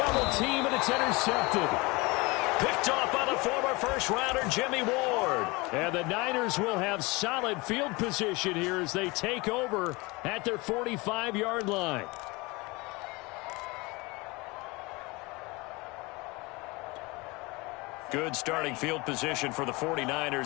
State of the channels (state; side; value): quieter; right; 24.7 dB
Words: team, and it's intercepted. Picked off by the former first-rounder Jimmy Ward. And the Niners will have solid field position here as they take over at their 45-yard line. Good starting field position for the